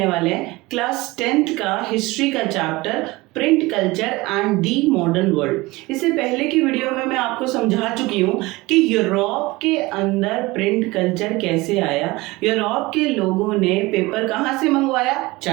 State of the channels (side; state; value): left; quieter; 21.6 dB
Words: वाले हैं, क्लास 10th का हिस्ट्री का chapter print culture and the modern world. इससे पहले की वीडियो में मैं आपको समझा चुकी हूँ कि यूरोप के अंदर प्रिंट कल्चर कैसे आया। यूरोप के लोगों ने पेपर कहाँ से मंगवाया,